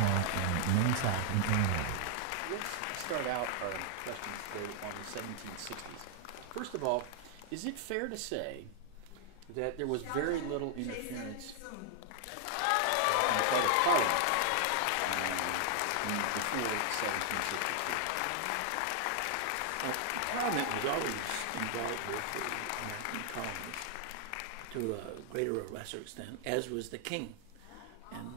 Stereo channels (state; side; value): different; both; correlation 0.00